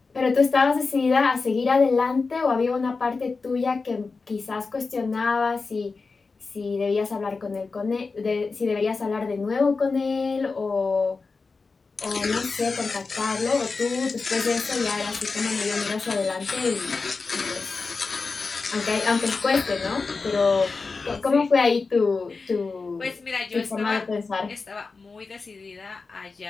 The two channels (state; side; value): quieter; right; 4.3 dB